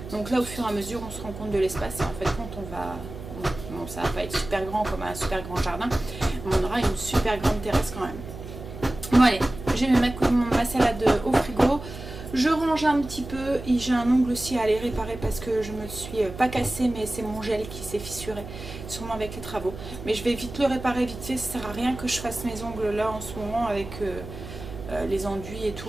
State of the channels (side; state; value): right; noise; hum, 12 dB below the sound